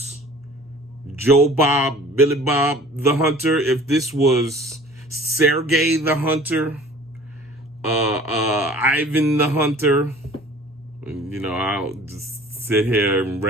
Joe Bob, Billy Bob the Hunter, if this was Sergey the Hunter, Ivan the Hunter, you know, I'll just sit here and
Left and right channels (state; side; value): normal; both; correlation 0.47